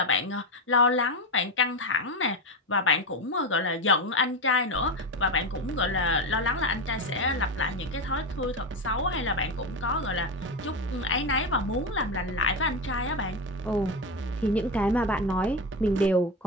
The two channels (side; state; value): both; normal; correlation 0.15